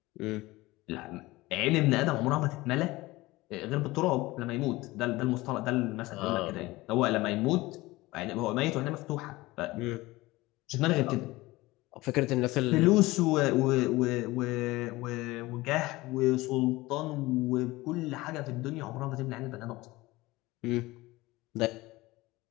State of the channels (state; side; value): quieter; right; 19.9 dB